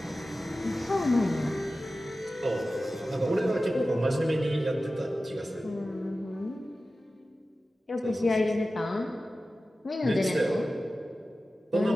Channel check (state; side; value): normal; both; correlation 0.95